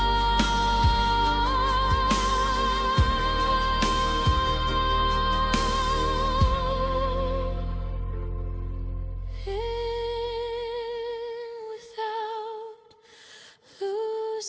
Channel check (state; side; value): identical; both; correlation 1.00